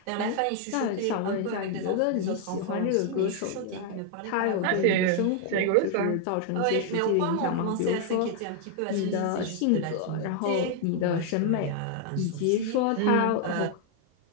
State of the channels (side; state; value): both; different; correlation 0.00